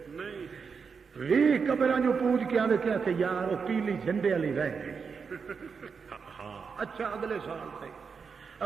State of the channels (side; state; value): left; quieter; 5.7 dB